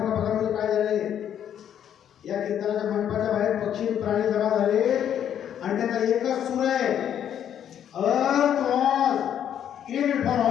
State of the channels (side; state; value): right; quieter; 9.7 dB